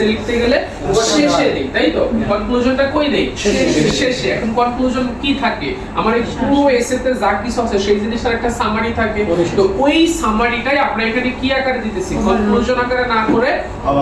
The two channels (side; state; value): both; identical; correlation 1.00